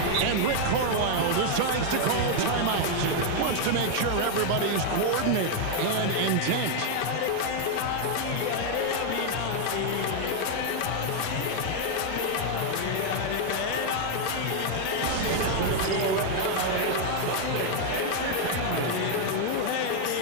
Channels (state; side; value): different; both; correlation 0.00